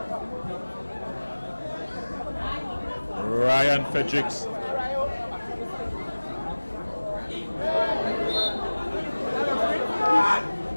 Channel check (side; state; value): both; inverted; correlation -1.00